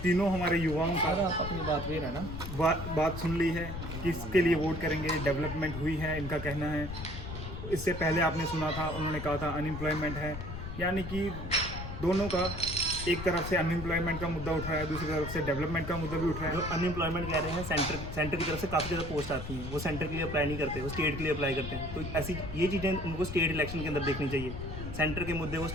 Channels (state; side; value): noise; left; rumble, 8 dB below the sound